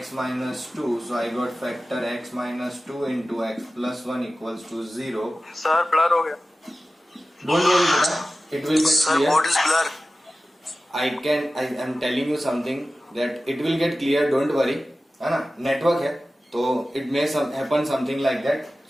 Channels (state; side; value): normal; both; correlation 0.95